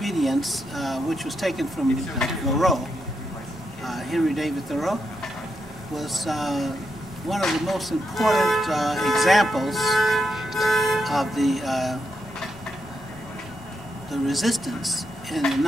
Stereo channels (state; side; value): normal; both; correlation 0.82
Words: which was taken from Thoreau, Henry David Thoreau, was one of the most important examples of the resistance in